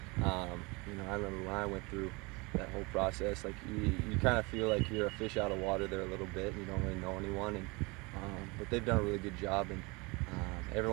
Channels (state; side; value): quieter; left; 26.6 dB